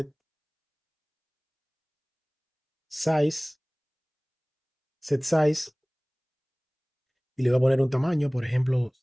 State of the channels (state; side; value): identical; both; correlation 1.00